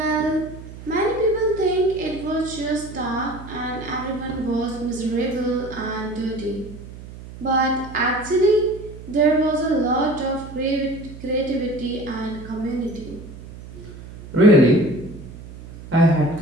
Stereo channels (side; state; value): right; noise; hum, 15 dB below the sound